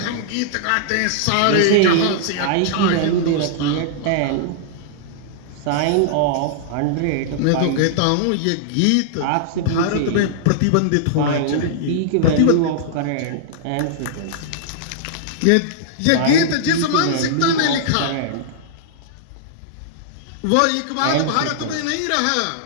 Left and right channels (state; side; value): different; both; correlation -0.01